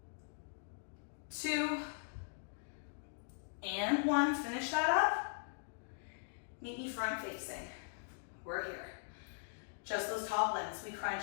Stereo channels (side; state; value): right; silent; digital silence